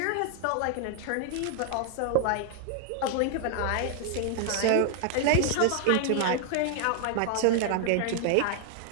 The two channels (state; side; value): different; both; correlation 0.00